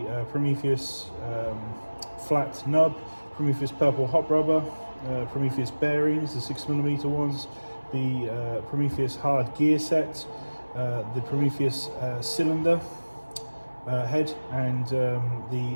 Prometheus Flat Nub, Prometheus Purple Hop rubber, Prometheus bearings, the 6mm ones, the Prometheus hard gear set, the Prometheus cylinder head, and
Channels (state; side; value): inverted; both; correlation -1.00